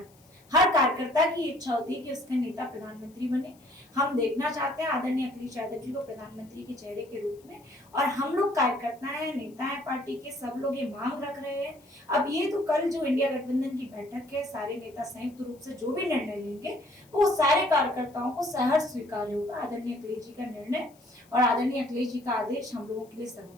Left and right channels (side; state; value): left; noise; hiss, 29 dB below the sound